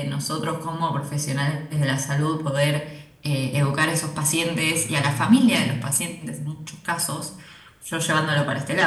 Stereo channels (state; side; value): identical; both; correlation 1.00